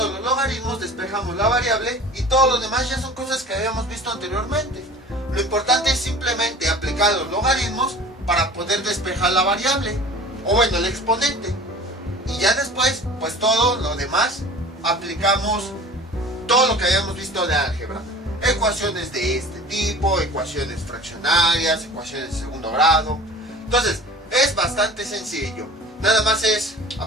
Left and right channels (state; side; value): normal; both; correlation 0.42